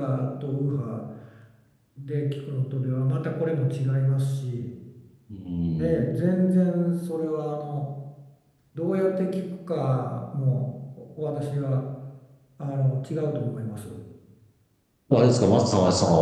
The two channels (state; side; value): identical; both; correlation 1.00